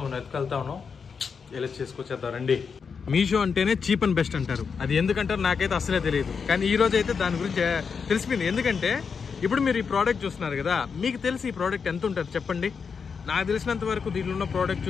మనం ఎత్తుకెళ్తాను. ఎలా చేసుకొచ్చేద్దాం రండి. మీషో అంటేనే చీప్ అండ్ బెస్ట్ అంటారు. అది ఎందుకంటారు నాకైతే అసలే తెలియదు, కానీ ఈ రోజు అయితే దాని గురించి తెలిసిపోయింది. ఎందుకంటే ఇప్పుడు మీరు ఈ ప్రోడక్ట్ చూస్తున్నారు కదా, మీకు తెలిసి ఈ ప్రోడక్ట్ ఎంత ఉంటుంది చెప్పండి. నాకు తెలిసినంత వరకు దీనిలో ఉన్న ప్రోడక్ట్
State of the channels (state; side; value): quieter; right; 5.9 dB